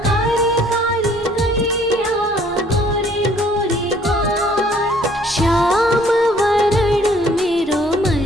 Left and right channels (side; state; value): both; normal; correlation 0.59